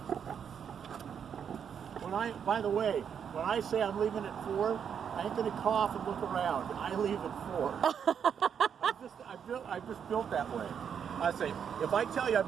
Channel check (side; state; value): left; quieter; 7.7 dB